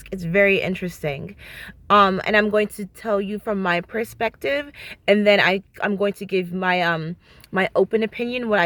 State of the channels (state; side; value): identical; both; correlation 1.00